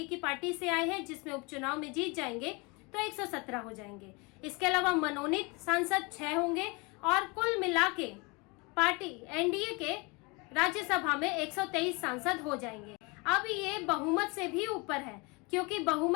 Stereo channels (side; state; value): right; quieter; 28.1 dB